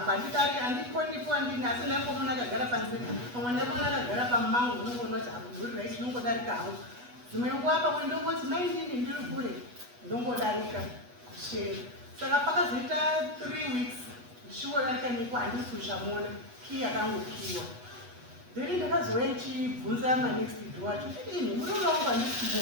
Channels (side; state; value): left; late; 8.2 ms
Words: handikonipo handini asi ndaingomuna akagara panze pamwe ndaimona akagara pamumango unongoona kuti hangu uri raiti ndongodarika hangu dzimwe nguva pamwe ndongoti maindini ndiri kure ndongodarika kusheni saka pakazoita 3 weeks ndichiwodarika niko handisi kuchamuona kii yakangokiwa then ndakazouya ndichibvunza manext door wacho ini murume wangu handisi